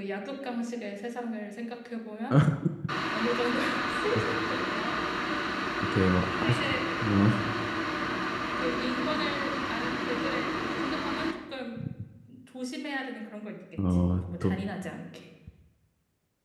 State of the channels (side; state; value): both; identical; correlation 1.00